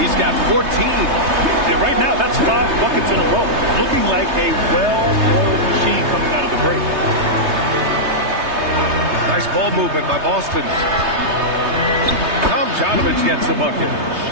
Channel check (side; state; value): left; late; 3.3 ms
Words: got 14. And right now, that's 5 buckets in a row. Looking like a well-oiled machine coming out of the break. Nice ball movement by Boston. Tomjanovich gets the bucket.